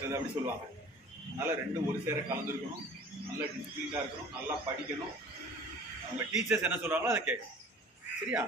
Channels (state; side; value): normal; both; correlation 0.45